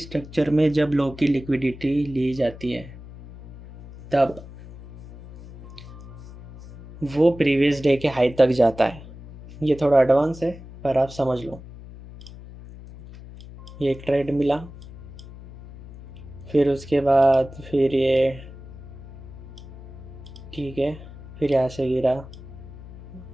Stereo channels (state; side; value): noise; left; hum, 16 dB below the sound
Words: स्ट्रक्चर में जब लो की लिक्विडिटी ली जाती है तब वो प्रीवियस डे के हाई तक जाता है। ये थोड़ा एडवांस है पर आप समझ लो। ये एक ट्रेड मिला, फिर उसके बाद फिर ये, ठीक है, फिर यहाँ से गिरा।